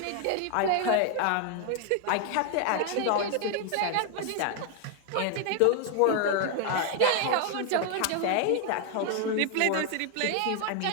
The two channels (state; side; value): different; both; correlation 0.01